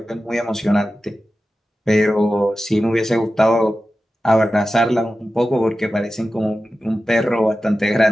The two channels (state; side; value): normal; both; correlation 0.93